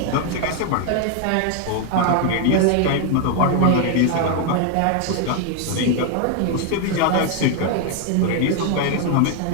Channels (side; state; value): both; different; correlation 0.01